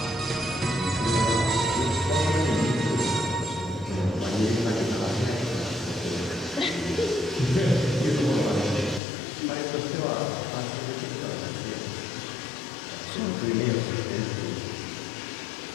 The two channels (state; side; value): drops out; right; at 9.0 s